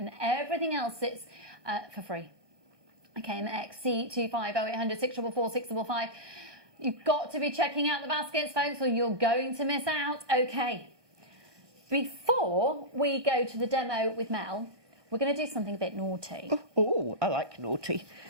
everything else sits for free. KMXC25 0800 644 655. You've got to be checking out the baskets, folks, or you're going to miss out. Okay. Before we go to the demo with Mel, we're going to do something a bit naughty. Oh, I like naughty.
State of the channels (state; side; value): late; left; 1.2 ms